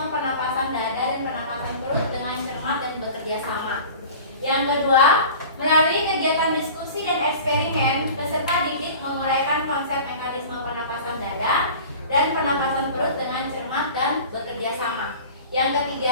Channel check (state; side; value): inverted; both; correlation -0.40